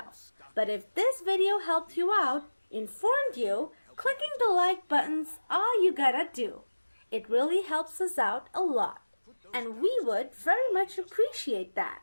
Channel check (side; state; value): both; inverted; correlation -1.00